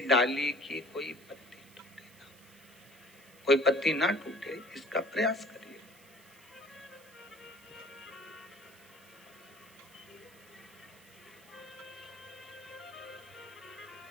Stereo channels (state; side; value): noise; right; hiss, 23 dB below the sound